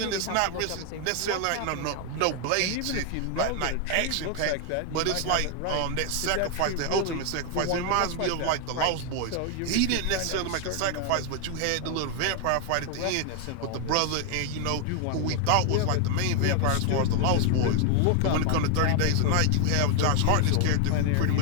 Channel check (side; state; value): both; different; correlation 0.00